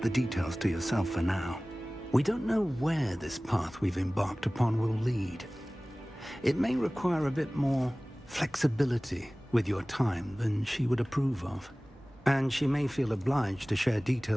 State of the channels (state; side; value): normal; both; correlation 0.98